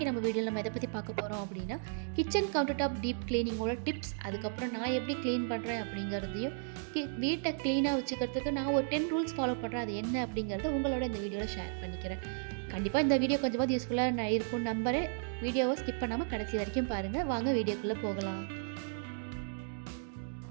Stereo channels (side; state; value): left; silent; digital silence